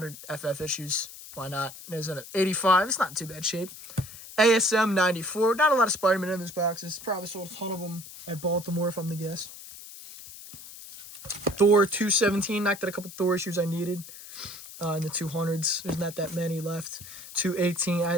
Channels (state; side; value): noise; left; hiss, 15 dB below the sound